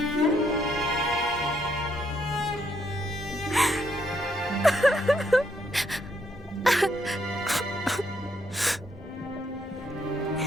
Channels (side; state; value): both; normal; correlation 0.74